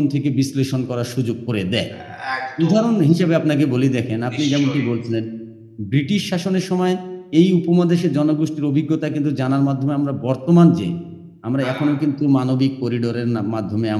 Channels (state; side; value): identical; both; correlation 1.00